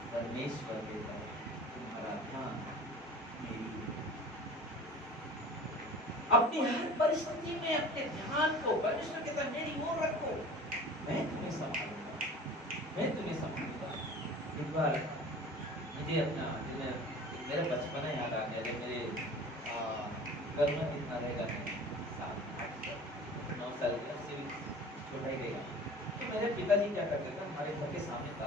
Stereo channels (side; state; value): both; normal; correlation 0.41